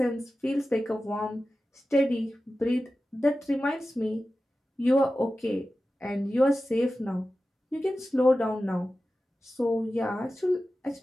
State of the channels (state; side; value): normal; both; correlation 0.94